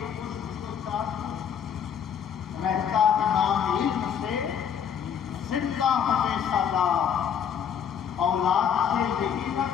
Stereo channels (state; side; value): quieter; right; 8.1 dB